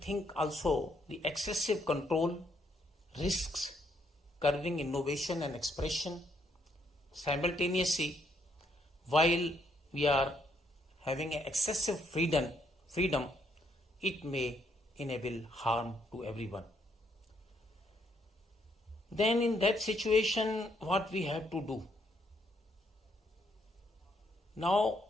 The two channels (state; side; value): normal; both; correlation 0.73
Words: also the excessive control, risks, curbing innovation and expression. Simultaneously, while we are having an excessive freedom, it may enable harm to everyone. Then in that situation, what we have to do? Now,